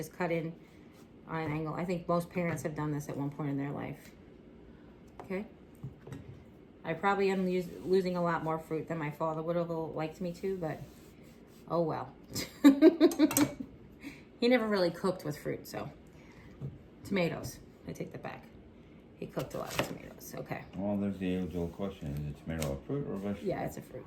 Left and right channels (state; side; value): identical; both; correlation 1.00